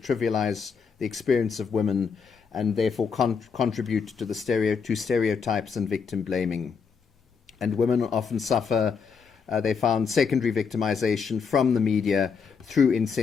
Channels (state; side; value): quieter; right; 5.8 dB